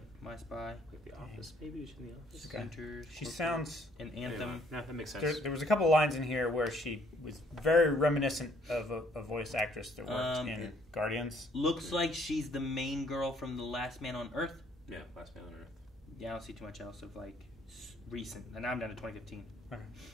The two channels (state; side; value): normal; both; correlation 0.64